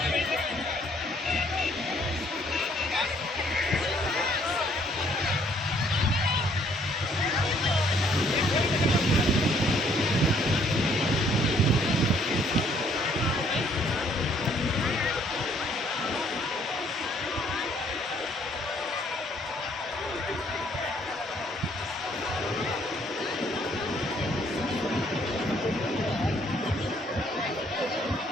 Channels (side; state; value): both; normal; correlation 0.64